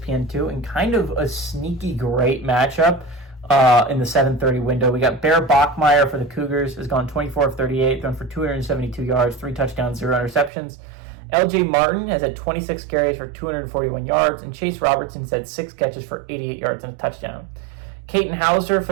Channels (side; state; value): left; drops out; at 10.5 s